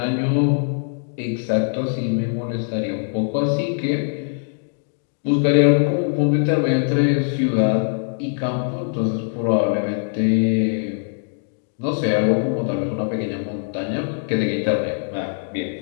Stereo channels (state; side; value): silent; right; digital silence